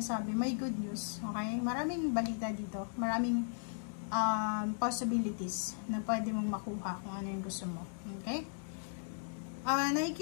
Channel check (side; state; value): right; silent; digital silence